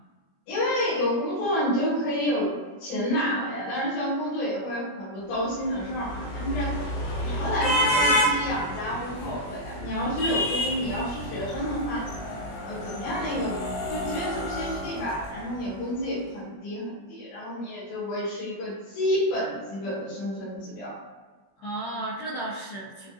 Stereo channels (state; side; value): late; right; 21 ms